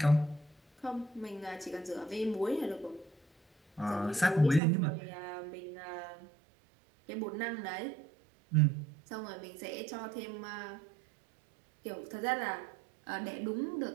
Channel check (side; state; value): left; drops out; at 4.6 s